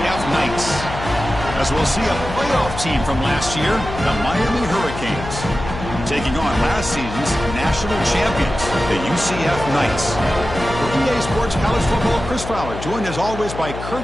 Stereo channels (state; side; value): noise; left; hum, 9 dB below the sound